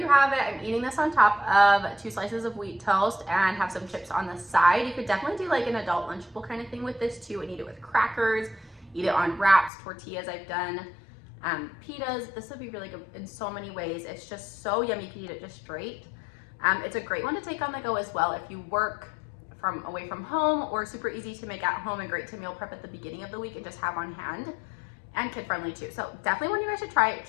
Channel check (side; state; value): right; drops out; at 9.7 s